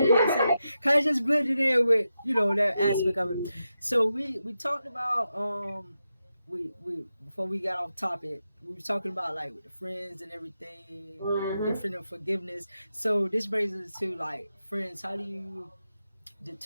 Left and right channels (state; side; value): inverted; both; correlation -0.88